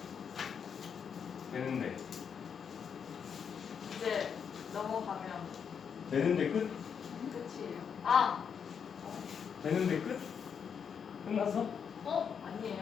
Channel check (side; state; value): right; quieter; 7.1 dB